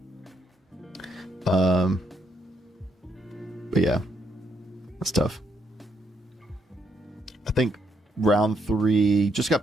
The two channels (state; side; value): normal; both; correlation 0.76